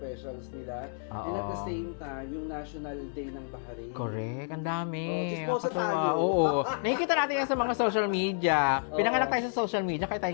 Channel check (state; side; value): silent; right; digital silence